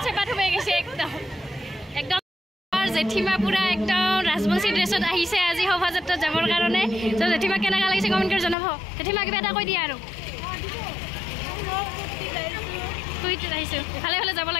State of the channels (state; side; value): drops out; right; at 8.6 s